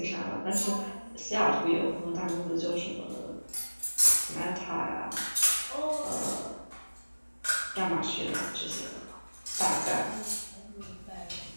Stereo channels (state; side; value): inverted; both; correlation -1.00